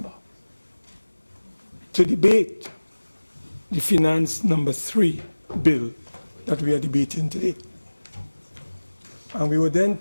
to debate the Finance Number 3 bill that we are debating today. And we were then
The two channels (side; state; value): both; inverted; correlation -1.00